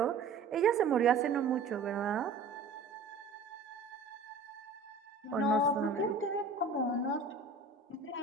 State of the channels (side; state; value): left; quieter; 4.1 dB